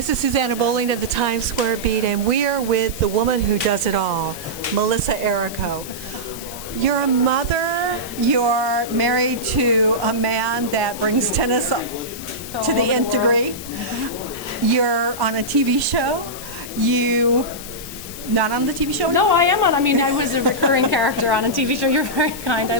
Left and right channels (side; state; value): left; noise; hiss, 12 dB below the sound